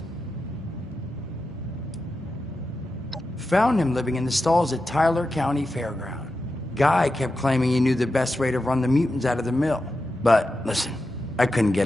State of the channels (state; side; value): normal; both; correlation 0.90